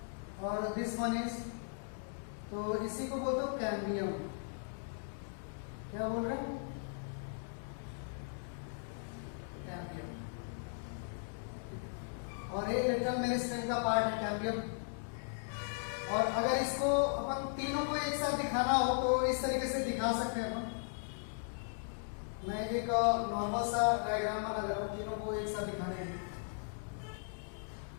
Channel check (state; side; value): silent; right; digital silence